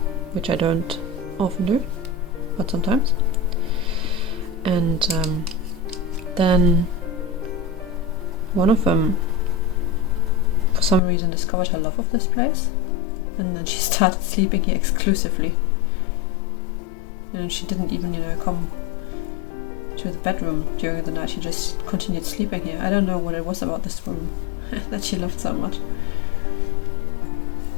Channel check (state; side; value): drops out; right; at 11.0 s